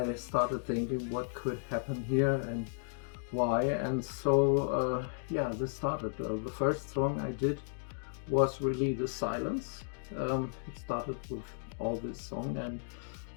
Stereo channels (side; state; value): right; silent; digital silence